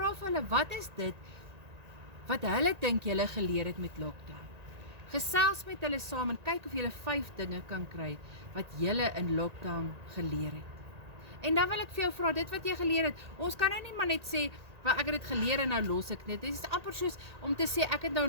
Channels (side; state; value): left; late; 1.8 ms